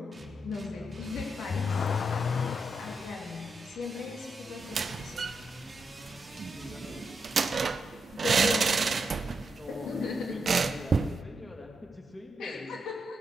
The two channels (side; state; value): both; normal; correlation 0.84